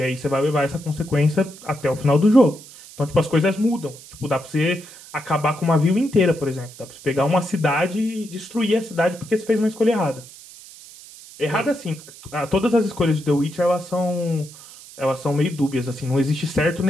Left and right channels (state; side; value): noise; right; hiss, 19 dB below the sound